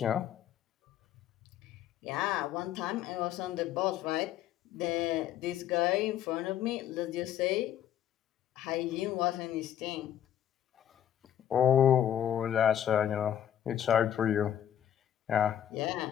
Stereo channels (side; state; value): right; quieter; 10.5 dB